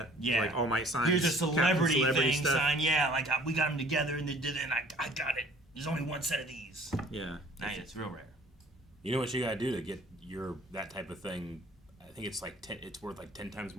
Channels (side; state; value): both; normal; correlation 0.52